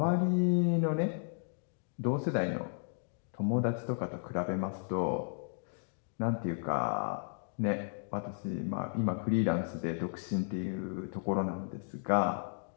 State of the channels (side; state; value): right; silent; digital silence